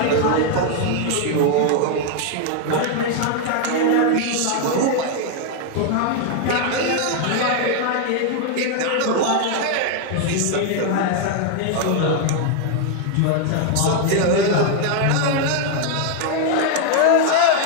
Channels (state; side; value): different; both; correlation 0.01